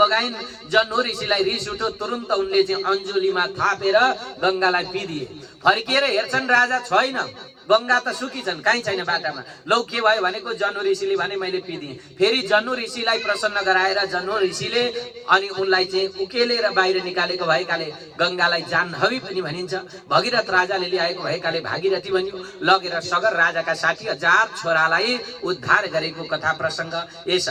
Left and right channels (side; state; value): both; identical; correlation 1.00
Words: जन्हु ऋषिलाई रिस उठ्यो, तुरुन्त उनले चाहिँ अञ्जुलीमा थापेर गंगालाई पिदिए। फर्किएर हेर्छन् राजा छैन, गंगा त सुकी छन्, कहीँ छैन बाटामा। लौ के भयो भनेको जन्हु ऋषिले भने मैले पिदिएँ। फेरि जन्हु ऋषिलाई प्रसन्न गराएर जन्हु ऋषिले अनि उनलाई चाहिँ उकेलेर बाहिर निकालेको भएकाले गंगालाई जाह्नवी पनि भनिन्छ। भगीरथ राजाले ल्याएको भएकाले भागीरथी भनियो। लगेर सगर राजाका 60,000 छोरालाई उद्धार गरेको कथा प्रसंग यस